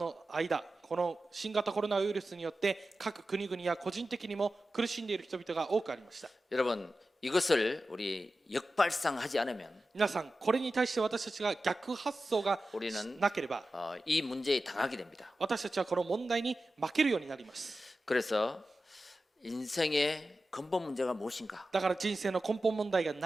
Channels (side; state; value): both; normal; correlation 0.93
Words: 間、この新型コロナウイルスによって各国々や個人的にも苦しんでいる人々が多くありました。 여러분, 이것을 우리 역발상하지 않으면 皆さん、これに対して私たちが逆発想が 우리는 なければ 이 문제에 당하게 됩니다. 私たちはこの問題に負けるようになります。 그래서 인생의 근본 문제가 무엇인가? だから人生の根本問題が